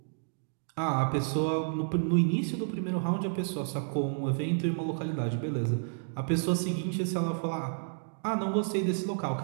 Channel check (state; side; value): silent; left; digital silence